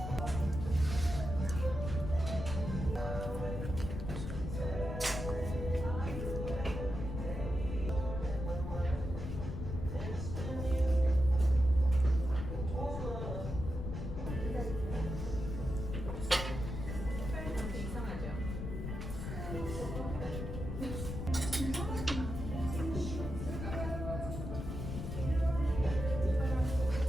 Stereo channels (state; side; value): noise; left; rumble, 5 dB below the sound